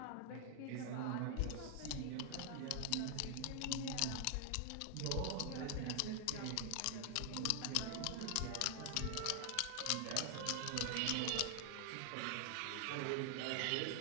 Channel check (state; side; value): different; both; correlation 0.00